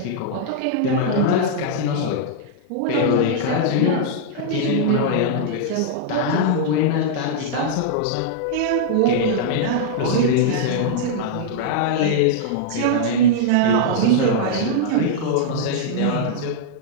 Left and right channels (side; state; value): both; different; correlation -0.01